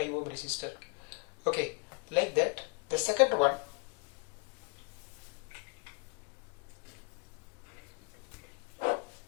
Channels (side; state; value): right; quieter; 32.2 dB